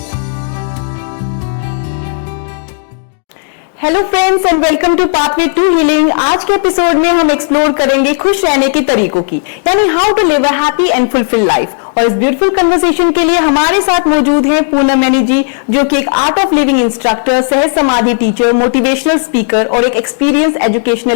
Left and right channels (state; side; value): silent; right; 71 dB below the other